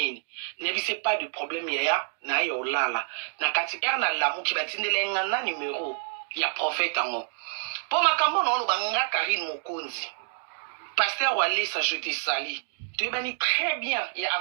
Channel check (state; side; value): silent; left; digital silence